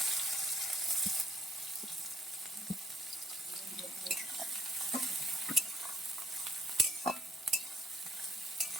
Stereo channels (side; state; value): both; normal; correlation 0.72